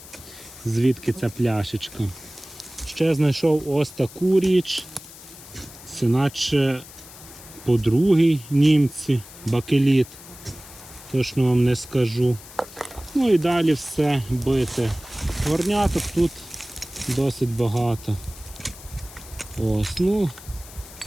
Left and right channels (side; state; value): left; noise; hiss, 18 dB below the sound